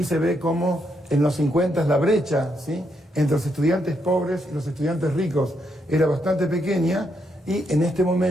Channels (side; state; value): both; normal; correlation 0.78